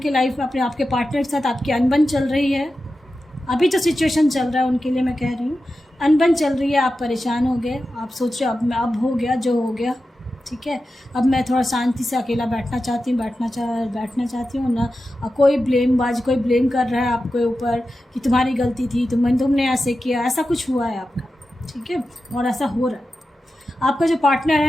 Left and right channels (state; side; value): normal; both; correlation 0.92